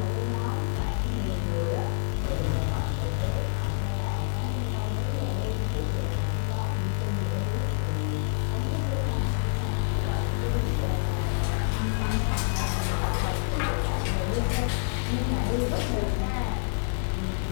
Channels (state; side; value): silent; right; 56 dB below the other